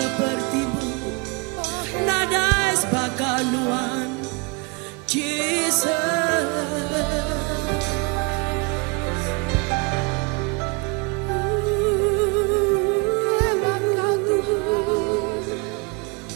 nada sebakaluan Jesus.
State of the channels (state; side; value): quieter; left; 28.6 dB